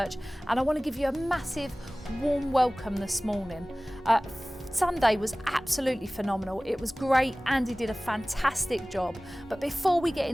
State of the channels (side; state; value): both; normal; correlation 0.98